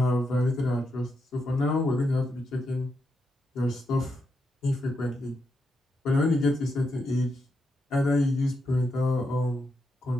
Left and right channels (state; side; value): normal; both; correlation 0.84